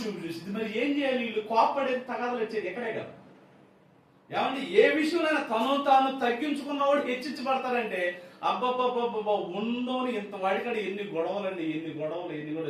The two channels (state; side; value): identical; both; correlation 1.00